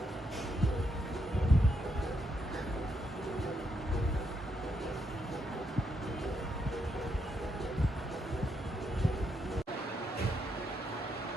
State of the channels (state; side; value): normal; both; correlation 0.78